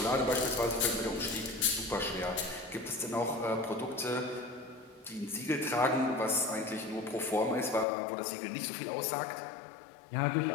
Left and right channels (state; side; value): drops out; right; at 7.9 s